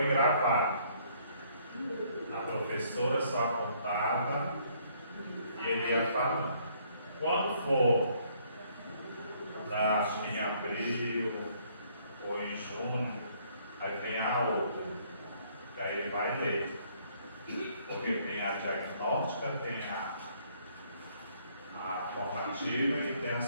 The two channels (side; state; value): both; inverted; correlation -0.65